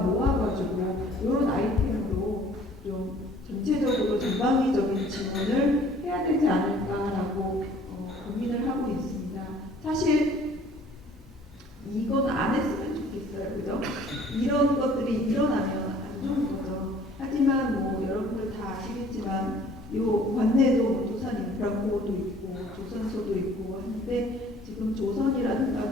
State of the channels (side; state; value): both; normal; correlation 0.54